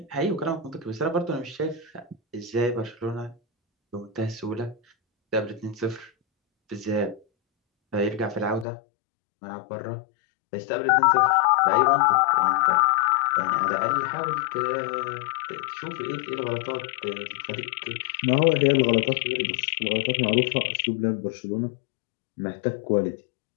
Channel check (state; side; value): drops out; right; at 8.7 s